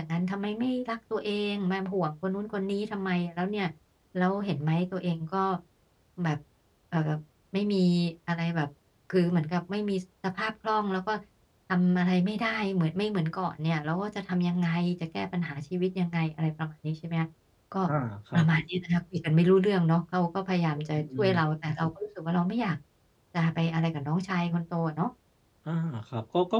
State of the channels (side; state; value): both; identical; correlation 1.00